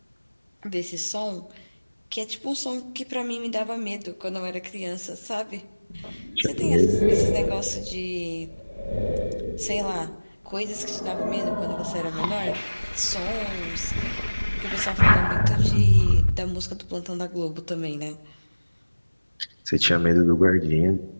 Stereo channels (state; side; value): inverted; both; correlation -1.00